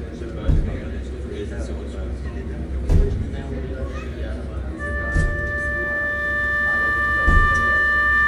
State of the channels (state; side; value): identical; both; correlation 1.00